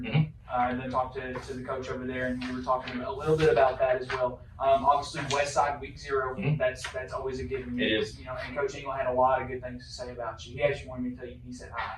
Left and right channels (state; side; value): identical; both; correlation 1.00